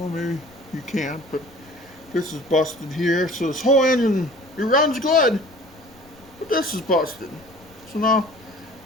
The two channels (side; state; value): left; noise; rumble, 25 dB below the sound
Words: maybe you can't, but this is busted here. So this whole engine, it runs good, but this is busted. So now